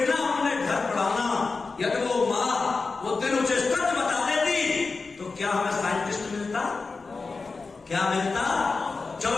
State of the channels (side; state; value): right; quieter; 4.2 dB